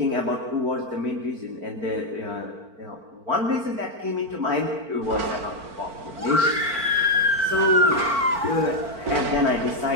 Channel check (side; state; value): left; late; 4.5 ms